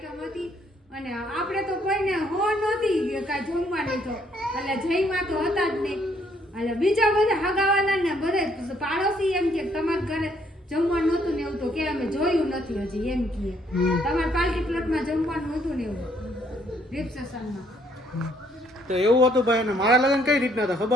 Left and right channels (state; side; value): normal; both; correlation 0.68